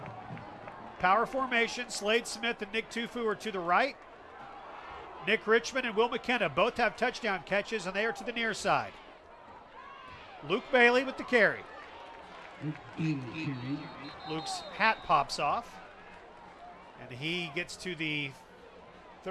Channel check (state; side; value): identical; both; correlation 1.00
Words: Power formation. Slade Smith and Nick Tufu are to the right. Nick Richmond and Will McKenna both have touchdown catches, and they are to the near side. Luke Bailey with the carry. Luke's hat pops off, and he gets to the